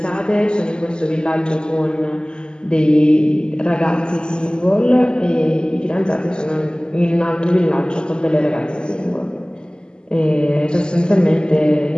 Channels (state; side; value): late; right; 0.048 ms